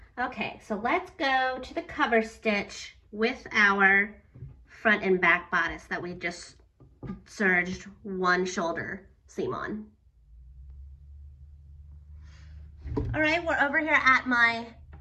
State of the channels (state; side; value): identical; both; correlation 1.00